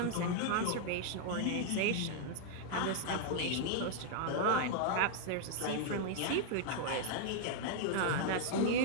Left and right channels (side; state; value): both; different; correlation -0.01